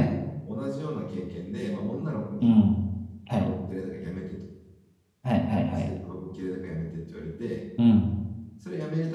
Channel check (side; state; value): both; identical; correlation 1.00